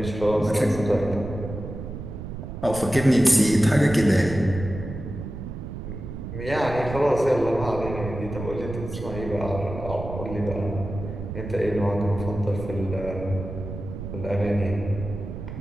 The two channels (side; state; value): right; noise; rumble, 8 dB below the sound